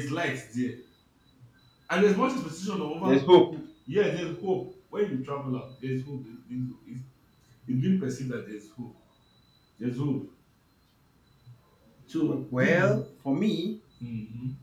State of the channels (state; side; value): identical; both; correlation 1.00